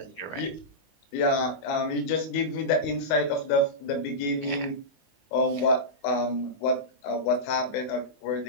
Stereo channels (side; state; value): right; late; 19 ms